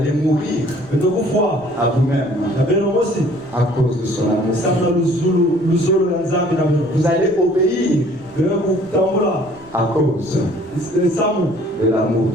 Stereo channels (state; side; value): noise; right; rumble, 24 dB below the sound